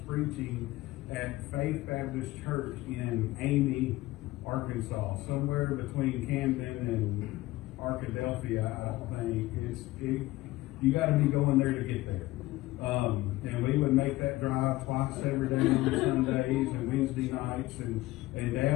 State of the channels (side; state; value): right; quieter; 18.3 dB